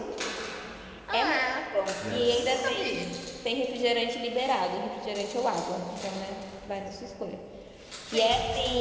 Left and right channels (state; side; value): identical; both; correlation 1.00